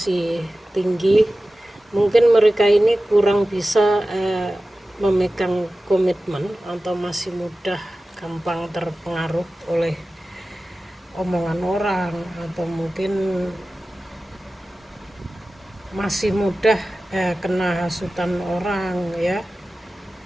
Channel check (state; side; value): normal; both; correlation 0.95